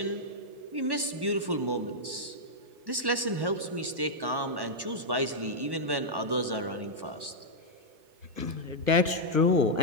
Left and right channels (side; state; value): left; late; 1.1 ms